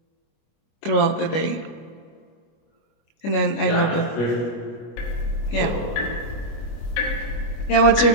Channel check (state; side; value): late; right; 25 ms